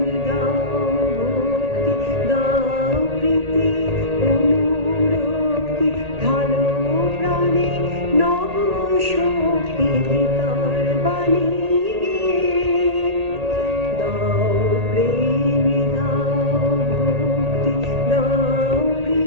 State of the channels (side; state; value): left; late; 1.8 ms